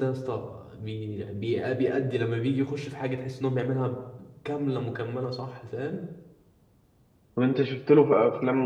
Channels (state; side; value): identical; both; correlation 1.00